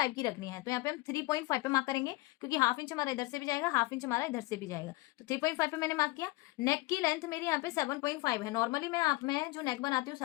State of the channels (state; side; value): quieter; right; 21.5 dB